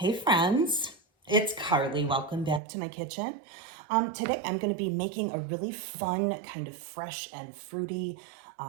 friends, it's Carly. Welcome back to my kitchen. Today I'm going to be making a really fun, kind of fresh and fruity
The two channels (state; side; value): drops out; left; at 2.6 s